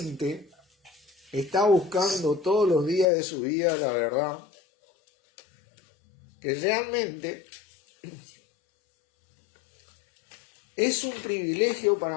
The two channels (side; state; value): right; drops out; at 3.1 s